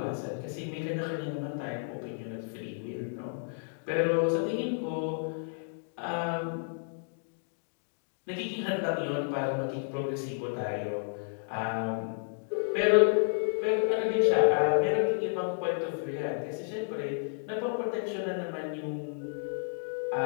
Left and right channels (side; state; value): right; silent; digital silence